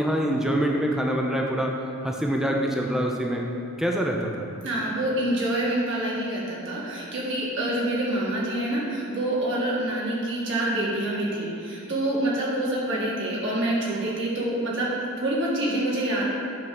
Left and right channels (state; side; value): normal; both; correlation 0.48